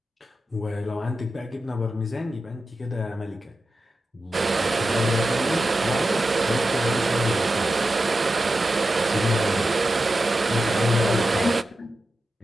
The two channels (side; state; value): both; normal; correlation 0.91